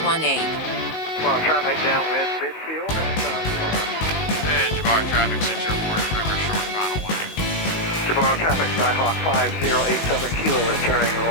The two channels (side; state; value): right; late; 19 ms